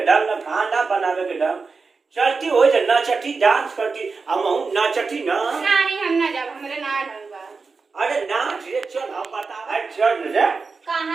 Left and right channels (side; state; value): left; quieter; 4.5 dB